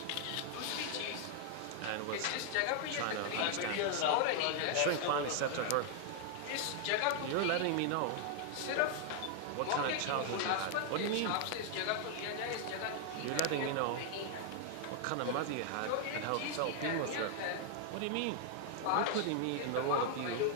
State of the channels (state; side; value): different; both; correlation 0.00